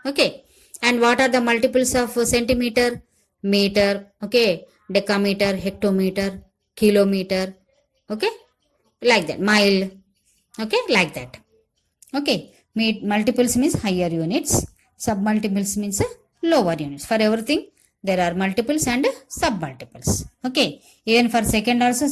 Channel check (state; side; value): identical; both; correlation 1.00